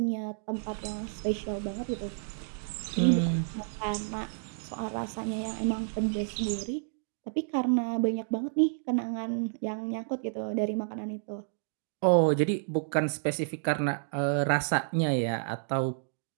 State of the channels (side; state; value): left; silent; digital silence